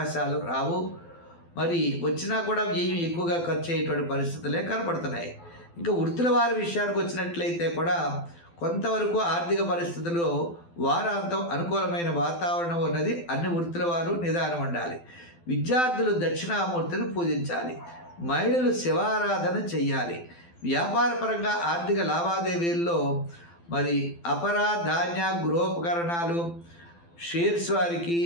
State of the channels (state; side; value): late; right; 12 ms